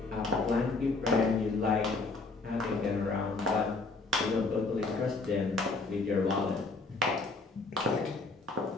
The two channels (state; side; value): quieter; right; 3.7 dB